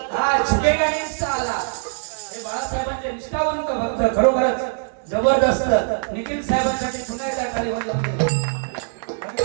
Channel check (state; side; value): silent; left; 64 dB below the other